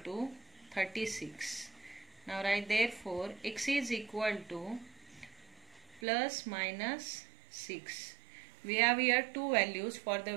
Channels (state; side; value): drops out; left; at 6.0 s